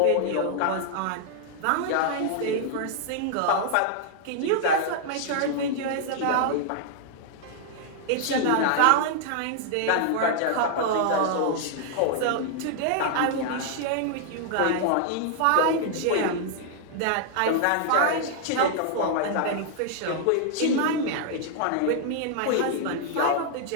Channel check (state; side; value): different; both; correlation -0.01